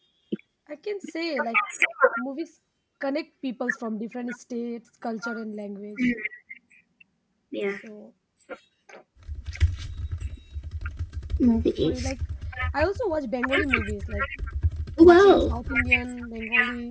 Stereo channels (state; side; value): identical; both; correlation 1.00